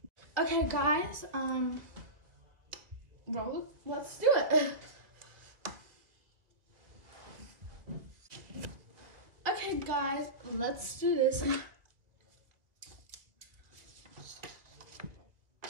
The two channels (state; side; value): late; left; 1.7 ms